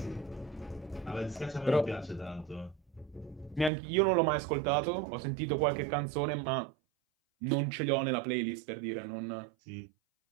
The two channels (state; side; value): drops out; left; at 3.7 s